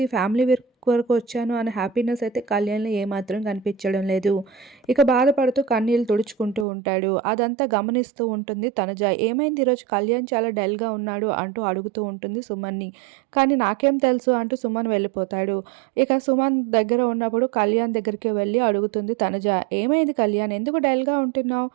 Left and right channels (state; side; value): drops out; left; at 6.7 s